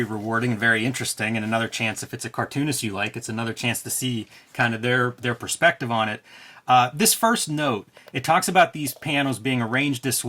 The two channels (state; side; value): identical; both; correlation 1.00